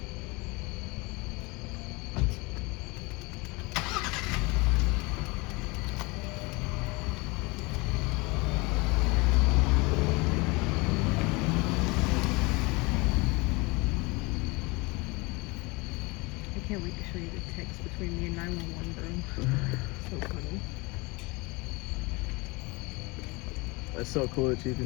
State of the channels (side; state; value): right; quieter; 25.4 dB